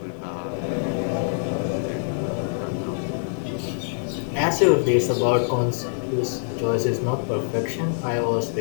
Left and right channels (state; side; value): silent; right; 62 dB below the other